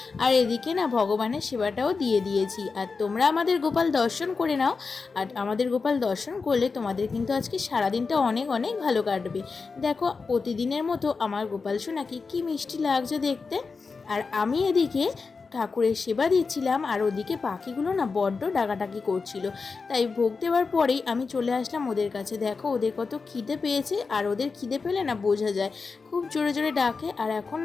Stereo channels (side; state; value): right; quieter; 4.6 dB